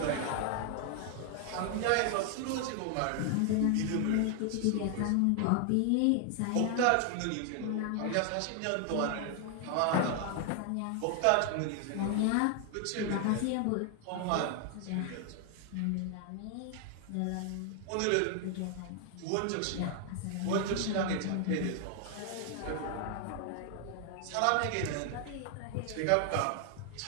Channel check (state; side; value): different; both; correlation 0.00